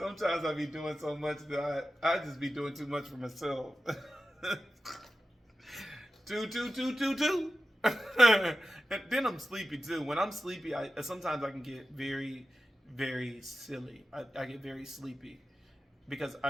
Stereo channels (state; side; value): normal; both; correlation 0.93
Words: I be doing so much that I just be doing too much for myself. 2, 2, 2, 2, 2. And then I'm sleepy too. When I'm sleepy, sometimes I can get very, very silly. I get very sleepy because